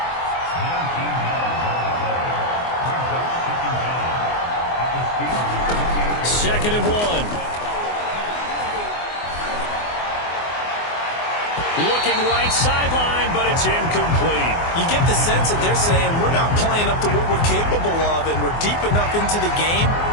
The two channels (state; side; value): late; right; 24 ms